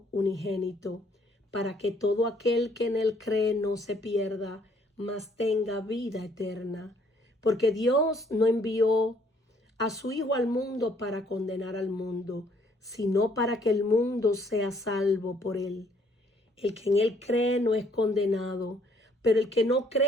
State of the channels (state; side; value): normal; both; correlation 0.64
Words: unigénito, para que todo aquel que en él cree no se pierda, mas tenga vida eterna. Porque Dios no envió a su Hijo al mundo para condenar al mundo, sino para que el mundo sea salvo por él. El que en él cree no es condenado, pero el que no